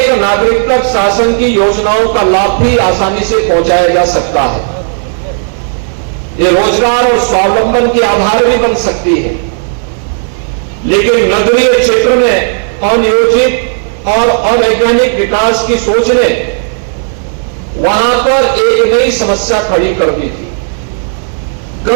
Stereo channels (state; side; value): silent; left; digital silence